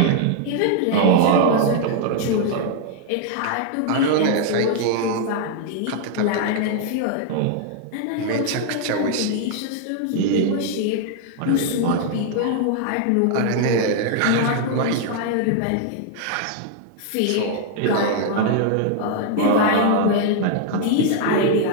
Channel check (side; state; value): both; different; correlation 0.00